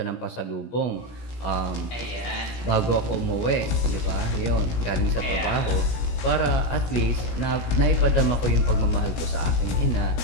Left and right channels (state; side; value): late; right; 17 ms